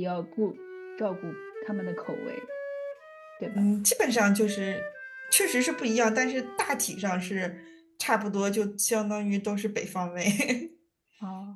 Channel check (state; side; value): identical; both; correlation 1.00